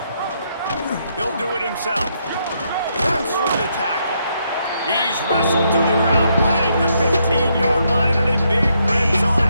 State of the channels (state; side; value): inverted; both; correlation -0.76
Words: He'll do it himself. Runs for the tackle. He's wrestled to the ground right at the 15-yard line, and a big red zone